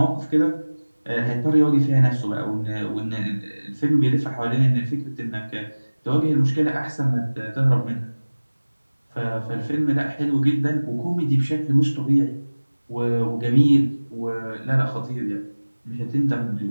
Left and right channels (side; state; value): both; inverted; correlation -1.00